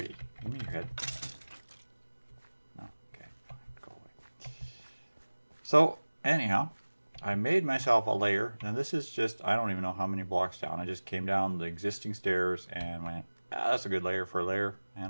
Give me your head. No, okay, fine, go away. So anyhow, I made myself a layer, and this is just, I don't even know how many blocks down. I just came down the existing stairs and went, that's a good layer for a layer,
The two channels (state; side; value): inverted; both; correlation -1.00